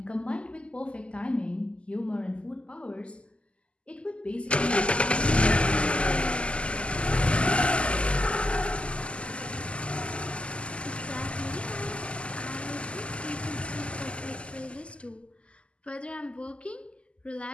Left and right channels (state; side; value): late; right; 0.055 ms